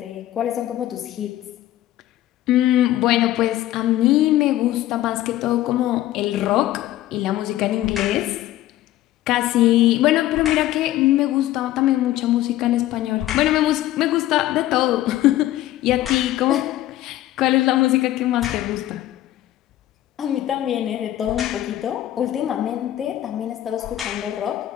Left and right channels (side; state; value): right; quieter; 14.3 dB